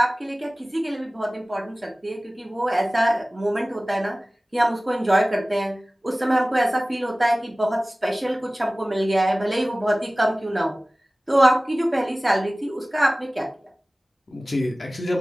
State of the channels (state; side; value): normal; both; correlation 0.98